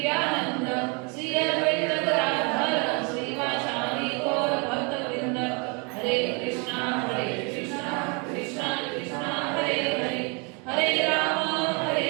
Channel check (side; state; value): left; quieter; 32.7 dB